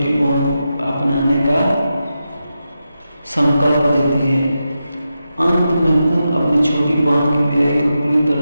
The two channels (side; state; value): both; inverted; correlation -0.89